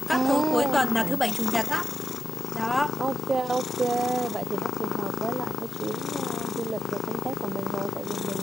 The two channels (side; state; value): both; normal; correlation 0.88